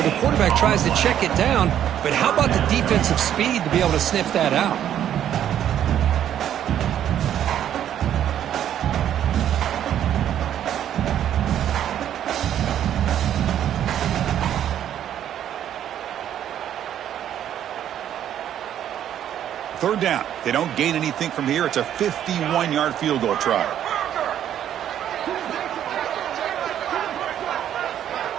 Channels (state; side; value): quieter; left; 10.5 dB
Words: The quarterback tries to check it down, but how about the defensive speed to be able to sniff that out? Third down. They don't gain anything from here. It's a 51-yard field goal try.